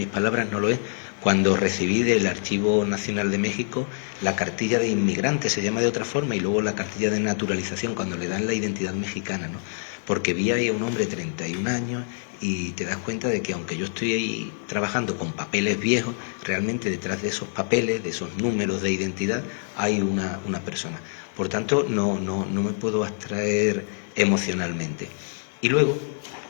palabras, no lo es, cuando recibí del Archivo Nacional de México la cartilla de inmigrante, se llama de otra forma, y luego la cartilla de naturalización, cuando le dan la identidad mexicana, ¿no? Porque vi ahí a un hombre de 31 años y te das cuenta de que aunque yo estoy ahí trabajando con papeles viejos, realmente detrás de esos papeles, de esos números de identidad, hay una persona. Por tanto, no me puedo abstraer emocionalmente. Y luego,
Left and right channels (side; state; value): right; silent; digital silence